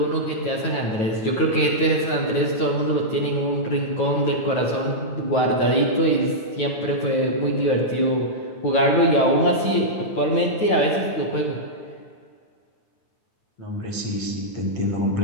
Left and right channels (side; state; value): right; late; 9.2 ms